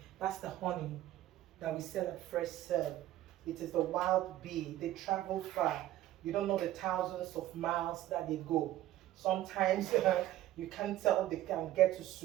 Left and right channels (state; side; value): quieter; left; 14.2 dB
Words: that's the honey that we sell at Fresh Serve. It is the wild bee. They travel far. You don't know the thousands of miles that they go. Sometimes you can't tell they can get to